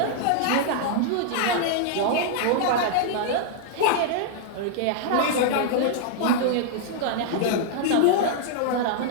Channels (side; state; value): both; different; correlation -0.01